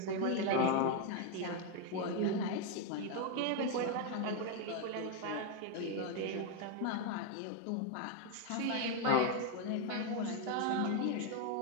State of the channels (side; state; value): both; different; correlation 0.01